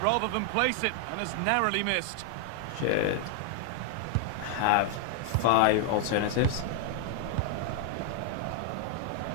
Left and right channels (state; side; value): different; both; correlation 0.00